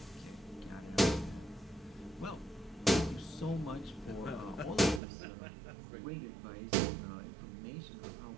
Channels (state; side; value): drops out; left; at 5.0 s